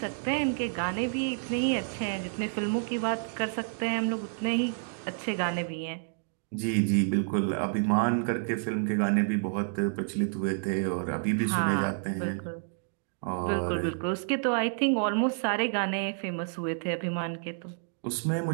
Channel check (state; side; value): silent; left; digital silence